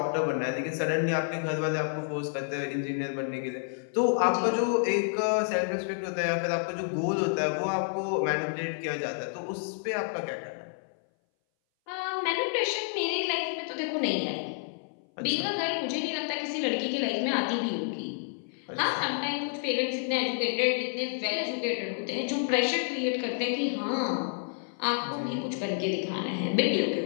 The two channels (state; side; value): silent; right; 58 dB below the other